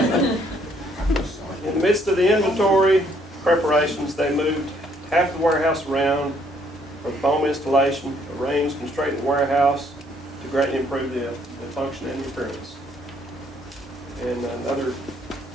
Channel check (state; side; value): normal; both; correlation 0.66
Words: In the midst of the inventory preparations, they moved half the warehouse around for foam installation, arranged and straightened the warehouse to greatly improve the function and the appearance. And